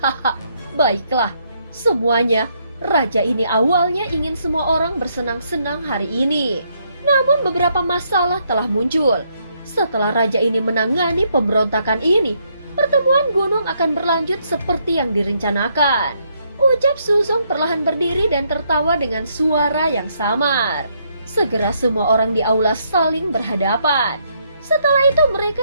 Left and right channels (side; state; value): both; inverted; correlation -0.73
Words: baiklah, semuanya. Raja ini awalnya ingin semua orang bersenang-senang hari ini. Namun beberapa masalah telah muncul. Setelah raja ini menangani pemberontakan ini, pertemuan gunung akan berlanjut seperti yang direncanakan. Ucap Suzong perlahan berdiri dan tertawa dengan suara yang samar. Segera semua orang di aula saling berhadapan. Setelah itu